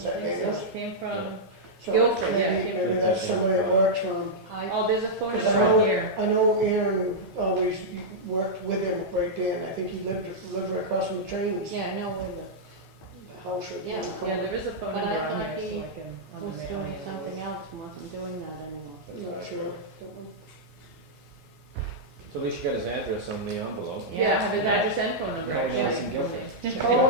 I that think so. Daniels? It came from. So Guilford, yeah, maybe- came Maybe from- that's somebody that works for him. Oh, there's a phone 'Cause number I know- on here. I know Aaron always worked with him right there, and I think he lived right across from the trains. Yeah, I know where The house right there. in the Yeah. Yeah, corner. there is a phone But I number on thought here, so he I can. on the the was mail doing it. something else and wasn't doing that anymore. I'm not sure. Don't know. So at least you got his address on the envelope. Yeah, I have his address and phone number. Yeah, actually. yeah, it's in Guilford. Just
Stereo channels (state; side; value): normal; both; correlation -0.08